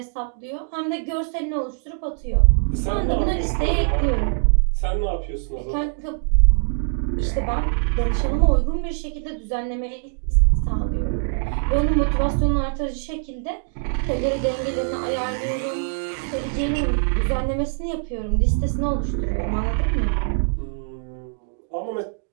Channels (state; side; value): silent; left; digital silence